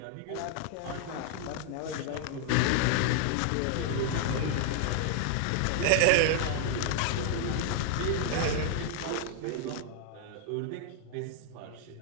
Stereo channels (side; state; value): both; different; correlation 0.00